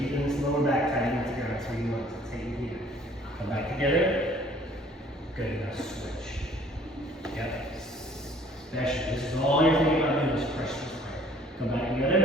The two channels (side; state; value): both; normal; correlation 0.56